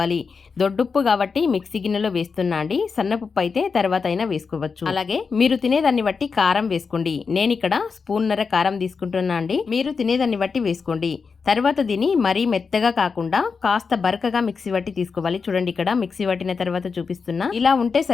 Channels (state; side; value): quieter; right; 5.2 dB